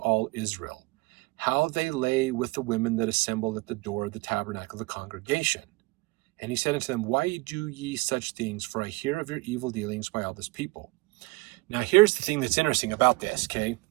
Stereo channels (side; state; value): left; quieter; 23.7 dB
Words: Israel, how they lay with the women that assembled at the door of the tabernacle of the congregation. And he said unto them, why do ye such things? For I hear of your evil dealings by all this people. Now here's the thing that's interesting about this, okay?